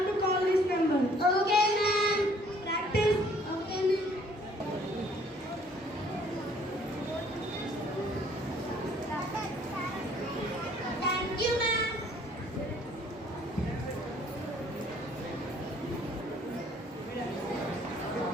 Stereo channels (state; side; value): normal; both; correlation 0.60